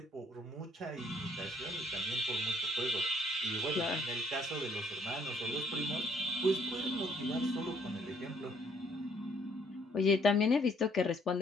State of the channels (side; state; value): both; normal; correlation 0.64